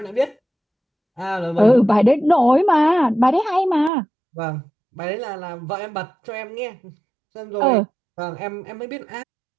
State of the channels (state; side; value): drops out; left; at 3.9 s